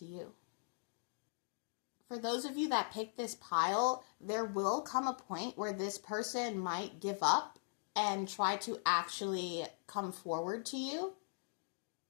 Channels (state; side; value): silent; right; digital silence